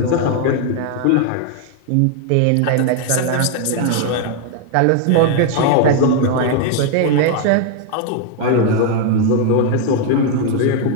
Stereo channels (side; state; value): both; different; correlation 0.00